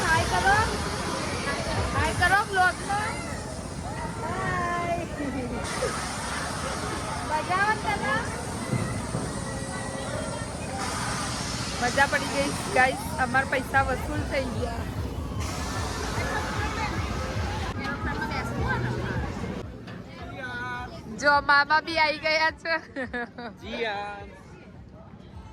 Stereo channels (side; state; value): both; identical; correlation 1.00